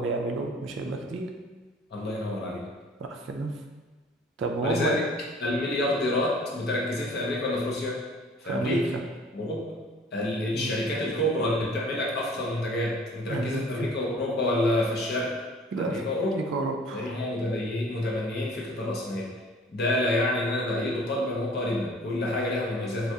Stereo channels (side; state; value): both; normal; correlation 0.50